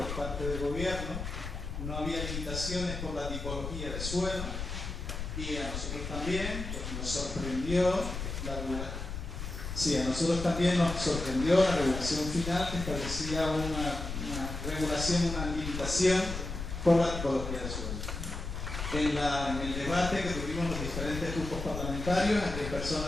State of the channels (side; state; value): left; noise; rumble, 6 dB below the sound